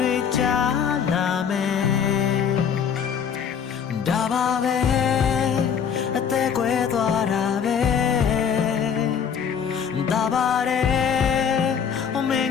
ွေကြားလာမယ်ဒါပါပဲအသက်ကွယ်သွားတာပဲဒါပါတယ်အမင်း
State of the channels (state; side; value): quieter; right; 7.4 dB